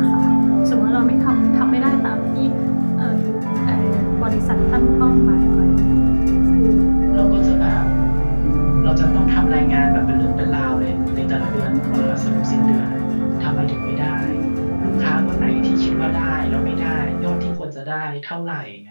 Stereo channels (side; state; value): both; inverted; correlation -1.00